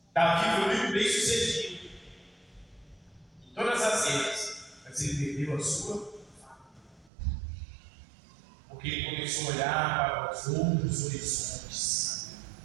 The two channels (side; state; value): left; drops out; at 7.1 s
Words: Davi foi muito bem sucedido em todas as áreas, mas ele perdeu a sua família. Porque ele começou a olhar para os outros horizontes,